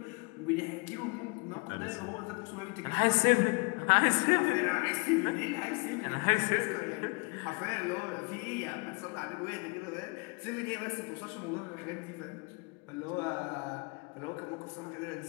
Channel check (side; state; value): right; quieter; 31.4 dB